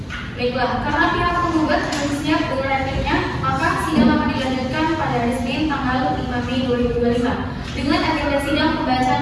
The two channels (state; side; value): identical; both; correlation 1.00